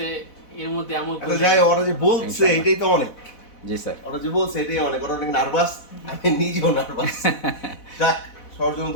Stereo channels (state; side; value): late; right; 4.1 ms